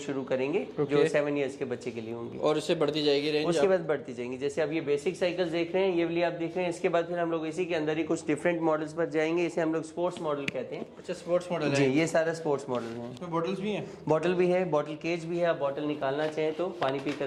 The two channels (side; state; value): both; identical; correlation 1.00